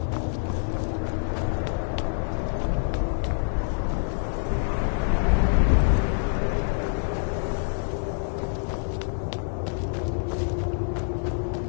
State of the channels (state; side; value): silent; right; digital silence